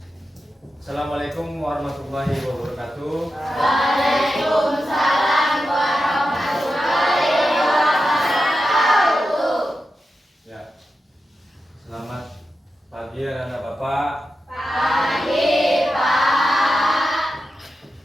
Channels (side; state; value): both; normal; correlation 0.90